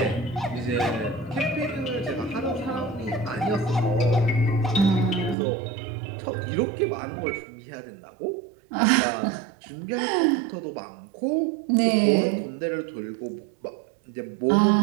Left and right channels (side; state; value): left; drops out; at 5.4 s